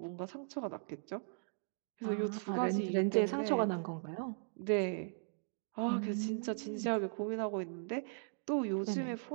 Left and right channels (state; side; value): silent; left; digital silence